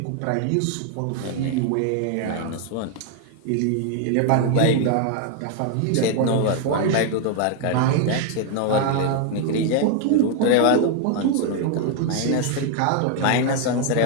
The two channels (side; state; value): both; different; correlation 0.00